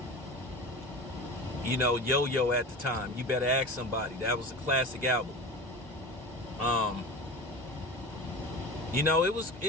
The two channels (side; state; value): both; normal; correlation 0.32